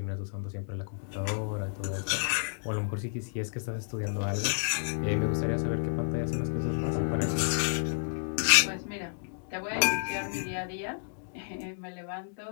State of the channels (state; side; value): silent; right; digital silence